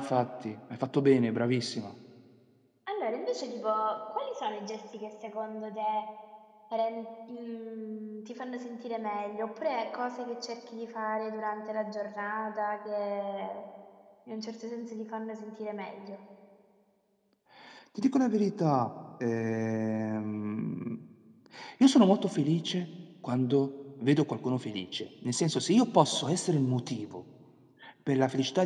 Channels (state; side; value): identical; both; correlation 1.00